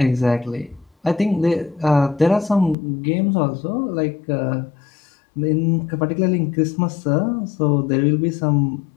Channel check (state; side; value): drops out; right; at 2.8 s